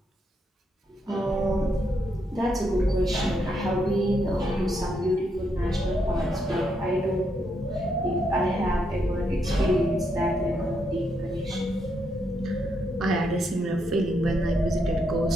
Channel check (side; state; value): both; normal; correlation 0.78